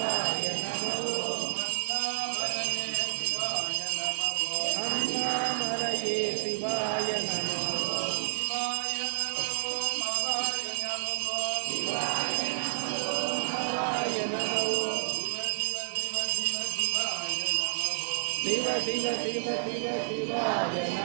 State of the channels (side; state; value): left; silent; digital silence